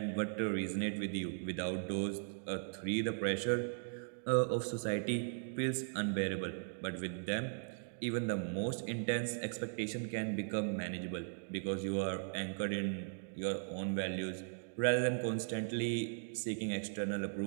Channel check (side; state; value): left; silent; digital silence